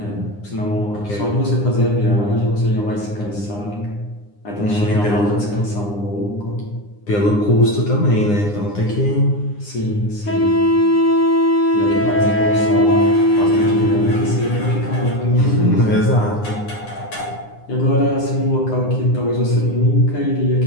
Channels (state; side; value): late; right; 9.8 ms